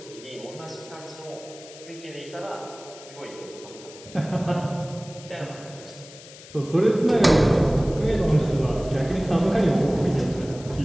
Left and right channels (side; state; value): left; noise; hiss, 18 dB below the sound